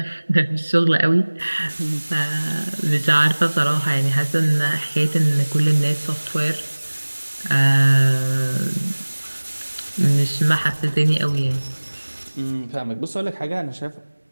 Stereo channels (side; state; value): both; inverted; correlation -1.00